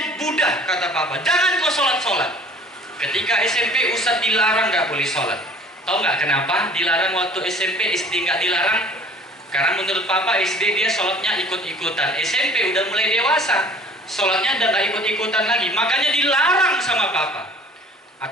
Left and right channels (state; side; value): normal; both; correlation 0.50